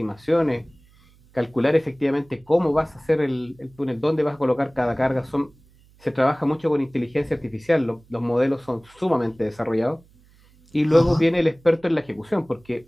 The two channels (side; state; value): right; noise; hum, 29 dB below the sound